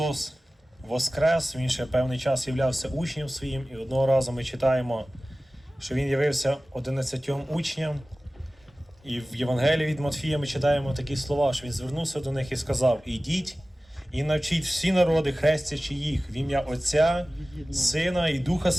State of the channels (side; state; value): both; normal; correlation 0.97